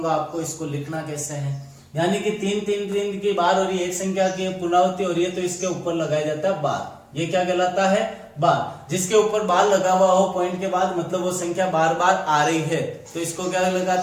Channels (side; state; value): both; identical; correlation 1.00